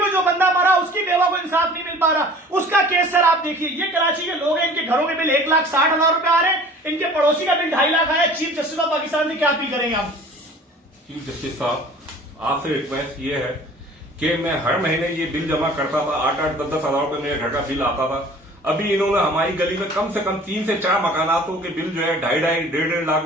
जो बंदा मरा उसकी बेवा को इंसाफ नहीं मिल पा रहा, उसका केस सर आप देखिए। ये कराची के लोग हैं, इनके घरों के बिल 1,60,000 रुपए आ रहे हैं, इनके पड़ोसी का बिल 2.5 लाख आया। चीफ जस्टिस ऑफ पाकिस्तान से क्या अपील करेंगे आप? चीफ जस्टिस साहब, आपसे रिक्वेस्ट ये है कि मैं हर महीने ये बिल जमा करता था, 8-8, 10-10 हजार रुपए मेरे घर का बिल आता था। अभी इन्होंने हमारी गली में कम से कम 3 से 4 मकानातों के बिल जो है 2.5 1.5 लाख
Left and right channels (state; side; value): normal; both; correlation 0.47